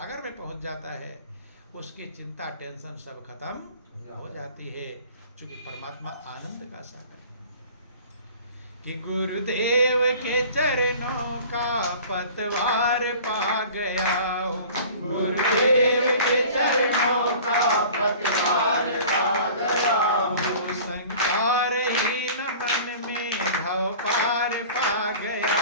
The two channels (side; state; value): both; inverted; correlation -0.44